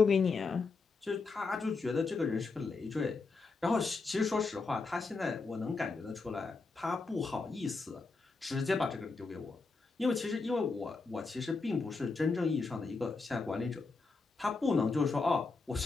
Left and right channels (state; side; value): quieter; right; 4.1 dB